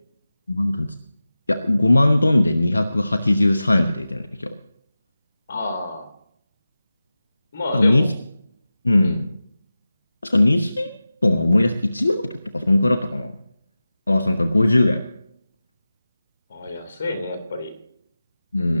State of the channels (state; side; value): inverted; both; correlation -0.95